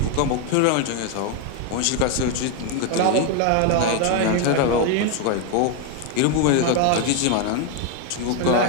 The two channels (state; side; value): different; both; correlation 0.01